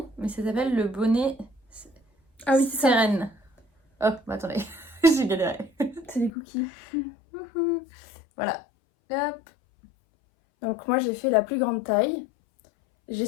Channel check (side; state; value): right; drops out; at 6.3 s